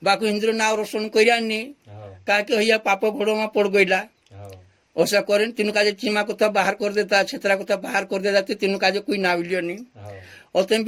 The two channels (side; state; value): both; identical; correlation 1.00